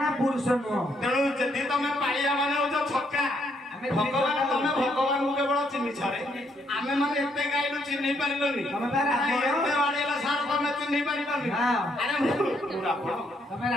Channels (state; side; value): normal; both; correlation 0.73